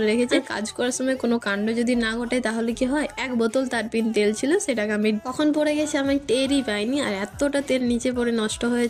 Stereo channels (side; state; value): both; identical; correlation 1.00